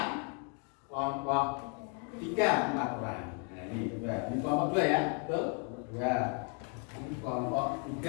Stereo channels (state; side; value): quieter; right; 39.8 dB